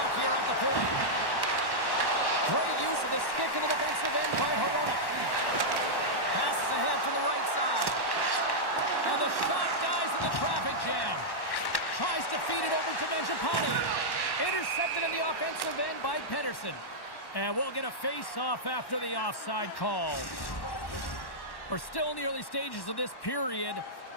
here at the point. Great use of the stick in the defensive end by Horonic. Passes ahead from the right side. And the shot dies in the traffic jam. Tries to feed it over to Mangiapane. Intercepted in the offensive end by Pedersen. And we'll get a face-off after the offside call. We're still in the early stages of this period.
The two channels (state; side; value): late; right; 1.1 ms